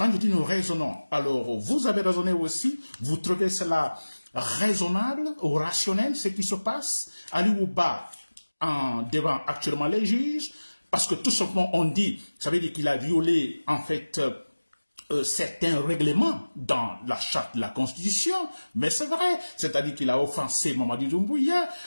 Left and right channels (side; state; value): both; inverted; correlation -1.00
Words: je dis nous raisonnons, alors vous avez raisonné aussi, vous trouvez cela raisonnable ou rationnel, ce qui se passe? Ali Ouba devant actuellement les juges, parce que tout simplement on dit, ça veut dire qu'il a violé en fait certains règlements dans la charte de la Constitution, mais c'est vrai, c'est-à-dire qu'il a offensé Mamadi Doumbouya,